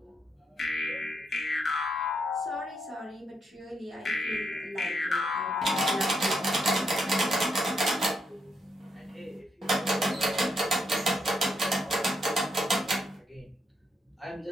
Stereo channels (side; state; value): both; normal; correlation 0.78